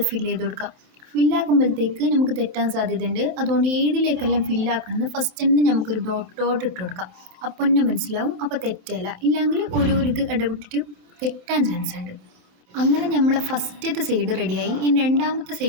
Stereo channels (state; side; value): late; left; 27 ms